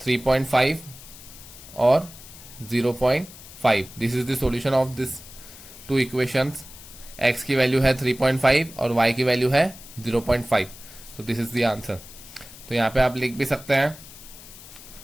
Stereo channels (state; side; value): noise; left; hiss, 17 dB below the sound